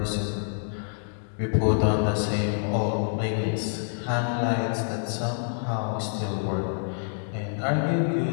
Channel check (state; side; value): silent; right; digital silence